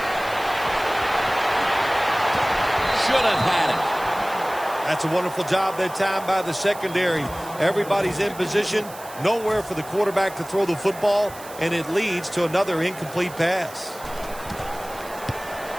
Should have had it. That's a wonderful job that time by the secondary. Everybody's in position. Nowhere for the quarterback to throw the football, and it leads to another incomplete pass.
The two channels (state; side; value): noise; right; hiss, 17 dB below the sound